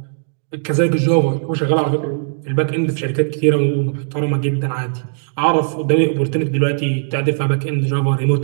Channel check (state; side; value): silent; left; 67 dB below the other